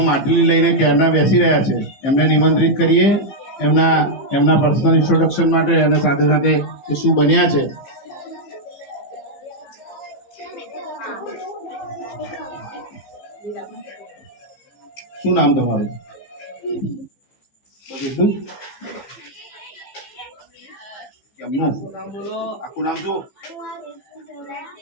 માટલી લઈને ક્યારના બેસી રહ્યા છે. એમને નિમંત્રિત કરીએ એમના પર્સનલ ઇન્ટ્રોડક્શન માટે અને સાથે સાથે એ શું બન્યા છે. શું નામ તમારું? બસ એટલું જ? કેમનું આખું નામ શું?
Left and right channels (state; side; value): late; right; 15 ms